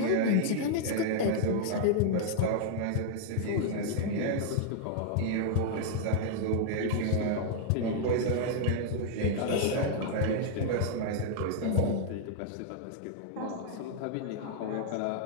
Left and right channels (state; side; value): different; both; correlation -0.01